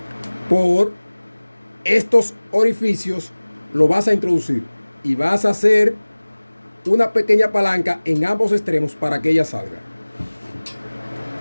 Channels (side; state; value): both; inverted; correlation -1.00